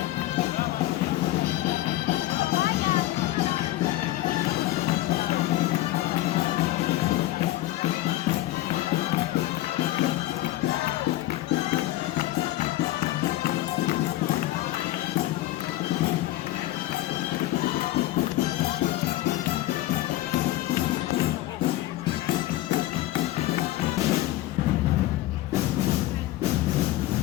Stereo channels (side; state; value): right; quieter; 16.0 dB